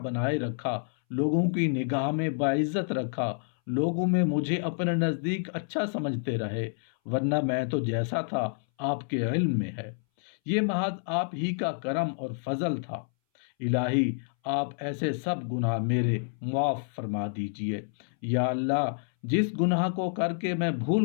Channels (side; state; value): right; silent; 59 dB below the other